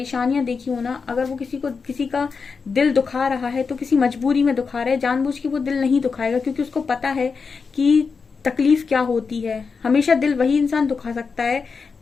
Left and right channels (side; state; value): right; quieter; 5.2 dB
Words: देखी हो ना, अगर वो किसी का दिल दुखा रहा है तो किसी मजबूरी में दुखा रहा है, जानबूझ के वो दिल नहीं दुखाएगा, क्योंकि उसको पता है कि तकलीफ क्या होती है। हमेशा दिल वही इंसान दुखा सकता है